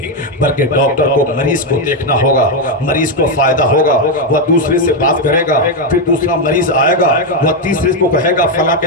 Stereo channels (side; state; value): both; normal; correlation 0.05